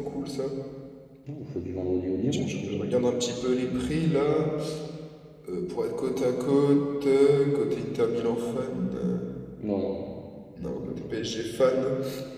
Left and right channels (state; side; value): identical; both; correlation 1.00